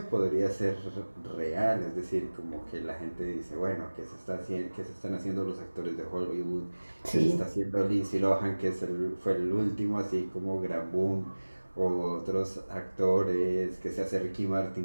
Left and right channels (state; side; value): inverted; both; correlation -1.00